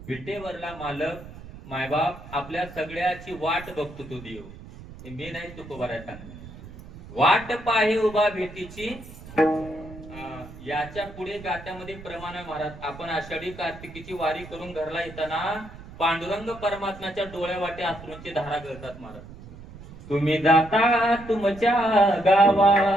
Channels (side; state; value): right; noise; rumble, 16 dB below the sound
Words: विटेवरला मालक मायबाप आपल्या सगळ्याची वाट बघतो तो देव. मी नाही तुकोबाराय सांगणार. वाट पाहे उभा भेटीची, याच्या पुढे गात्यामध्ये प्रमाण आहे महाराज. आपण आषाढी कार्तिकीची वारी करून घरला येताना पांडुरंग परमात्म्याच्या डोळ्या वाटे अश्रूंची धारा गळतात महाराज. तुम्ही जाता तुमच्या गावा,